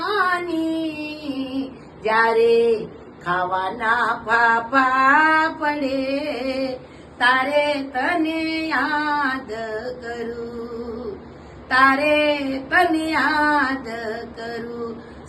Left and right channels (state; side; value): identical; both; correlation 1.00